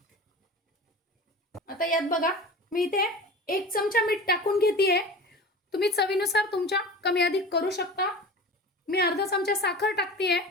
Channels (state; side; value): normal; both; correlation 0.35